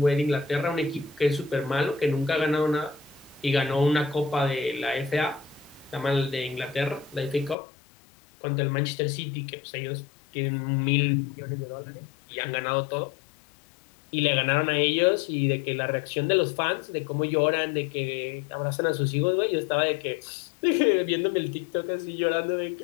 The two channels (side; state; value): right; drops out; at 7.6 s